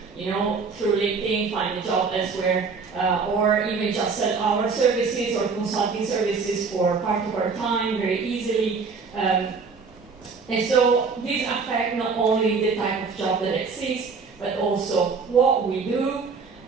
through LinkedIn, find a job elsewhere, or even just sell our services or consulting services for part of our time very easily. And so these affect not only the type of job that exists, but also what we do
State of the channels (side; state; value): left; quieter; 5.0 dB